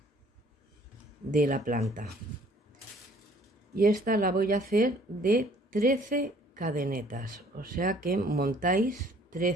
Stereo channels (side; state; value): both; normal; correlation 0.57